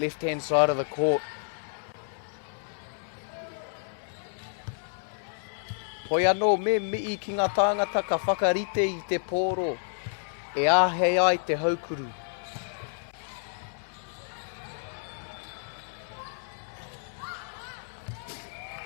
side of the court. Hoi anō me mii ki ngā tāngata ka whakarite I te pōro. E āhei ai te haukuru.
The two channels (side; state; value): right; silent; digital silence